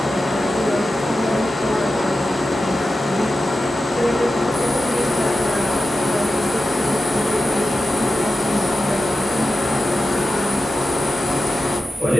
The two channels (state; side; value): normal; both; correlation 0.92